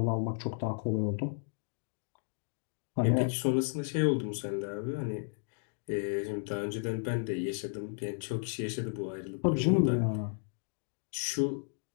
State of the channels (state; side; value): silent; right; digital silence